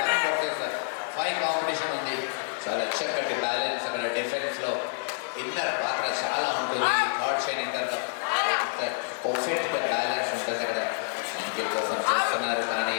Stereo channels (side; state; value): right; silent; digital silence